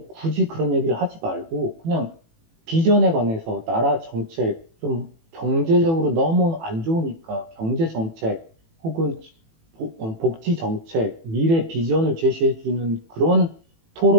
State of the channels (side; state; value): left; late; 18 ms